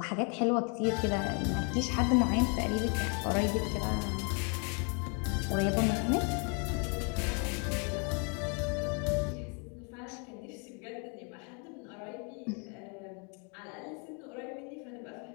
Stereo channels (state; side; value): quieter; right; 36.9 dB